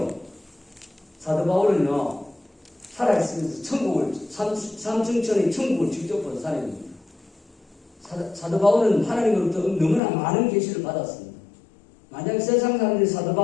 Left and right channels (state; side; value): drops out; right; at 10.0 s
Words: 사도 바울은요 살아있으면서 천국을 삼층천의 천국을 직접 본 사람입니다. 사도 바울은 하나님으로부터 너무나 많은 계시를 받았습니다. 만약 세상 사람들이 사도